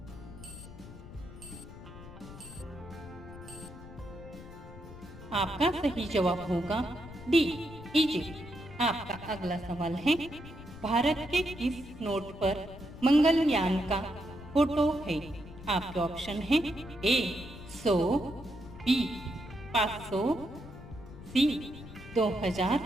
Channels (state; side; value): noise; left; rumble, 15 dB below the sound